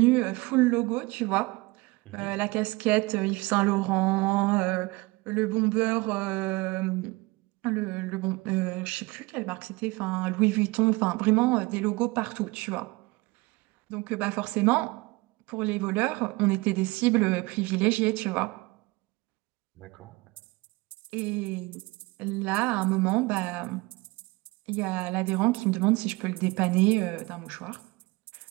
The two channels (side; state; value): left; quieter; 23.7 dB